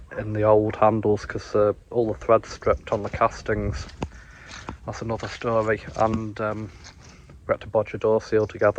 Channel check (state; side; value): identical; both; correlation 1.00